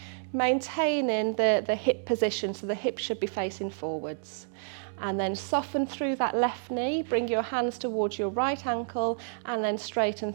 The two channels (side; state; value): left; silent; digital silence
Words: maintaining the hip position, so the hip should be facing forwards. And then soften through that left knee, bring your hands towards your right ankle, and then straighten